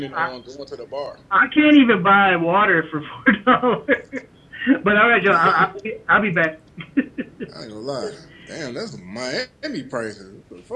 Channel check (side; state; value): both; identical; correlation 1.00